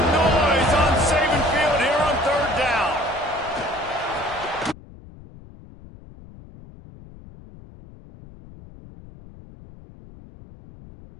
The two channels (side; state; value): left; noise; rumble, 20 dB below the sound